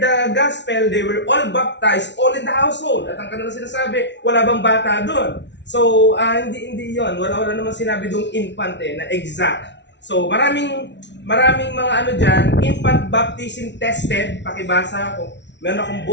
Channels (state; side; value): late; right; 0.51 ms